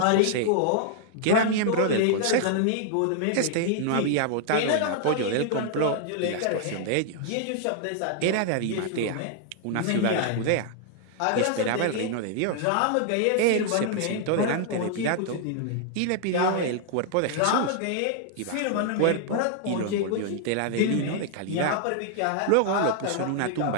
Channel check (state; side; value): different; both; correlation 0.00